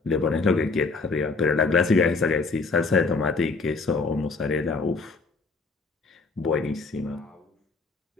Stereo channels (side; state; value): right; quieter; 4.1 dB